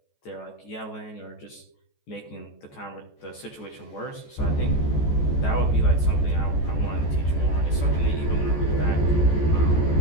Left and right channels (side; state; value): right; late; 14 ms